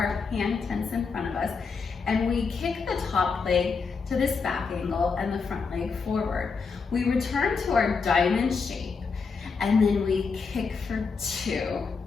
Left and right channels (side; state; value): right; quieter; 5.1 dB